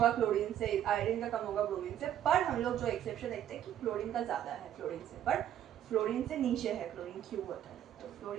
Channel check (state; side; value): quieter; left; 11.0 dB